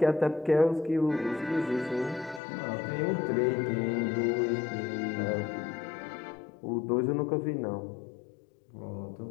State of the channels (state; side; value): drops out; right; at 2.4 s